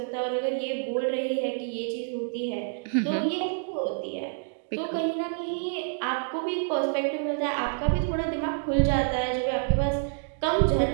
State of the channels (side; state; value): left; silent; digital silence